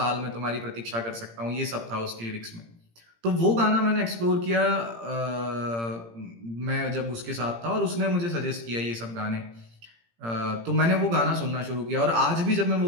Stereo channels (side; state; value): left; late; 17 ms